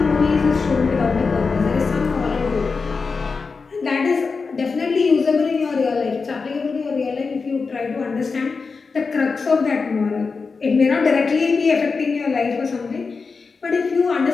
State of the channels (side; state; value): right; quieter; 4.7 dB